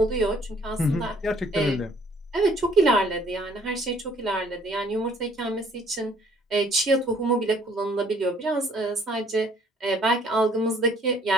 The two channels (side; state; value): both; normal; correlation 0.60